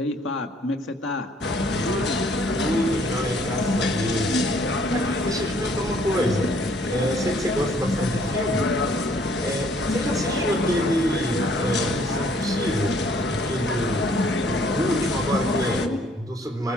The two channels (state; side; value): normal; both; correlation 0.62